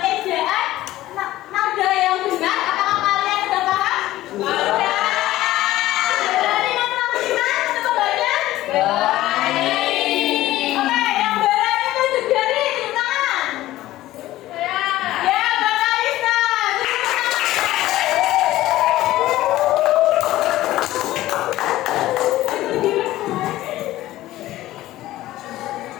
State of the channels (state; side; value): quieter; right; 15.6 dB